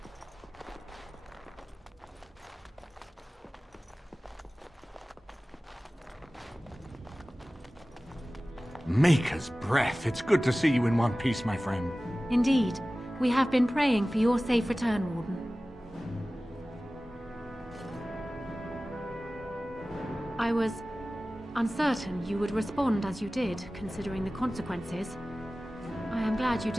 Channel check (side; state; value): both; normal; correlation 0.97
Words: Maker's breath. It's good to see you in one piece, my friend. Indeed. We have been praying for your safe return, Warden. I was uncertain you would respond as you did, considering the consequences. I am glad you